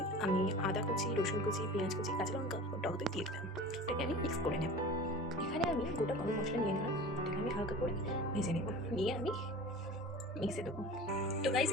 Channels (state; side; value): normal; both; correlation 0.37